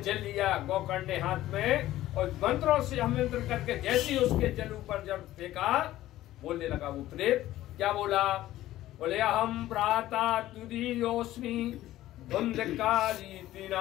लिया गोकर्ण ने हाथ में, और मंत्रों से अमंत्र करके जैसे ही उसके जल ऊपर जब फेंका, बोलने लगा वो प्रेत। क्या बोला? बोले हम भ्राता तुदीयोस्मि धुंधकारी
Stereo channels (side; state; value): right; quieter; 14.8 dB